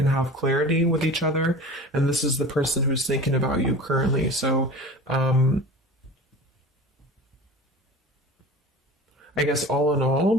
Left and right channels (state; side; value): normal; both; correlation 0.37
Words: have clarity with each other. And this is the person who's thinking about you currently. So I guess all in